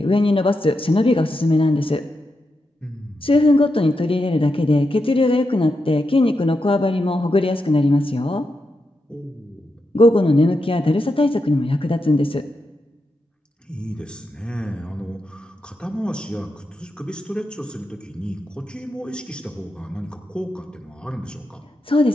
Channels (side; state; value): both; normal; correlation 0.86